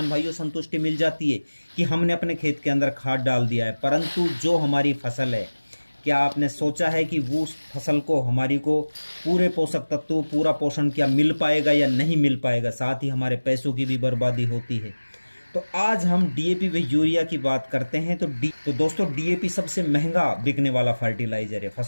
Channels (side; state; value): both; inverted; correlation -1.00